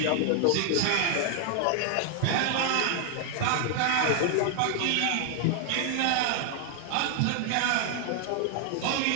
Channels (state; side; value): different; both; correlation 0.00